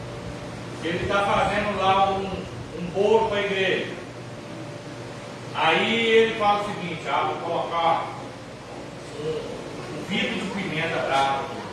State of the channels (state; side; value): identical; both; correlation 1.00